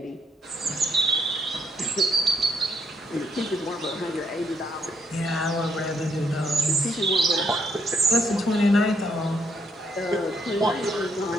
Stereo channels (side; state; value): both; normal; correlation 0.73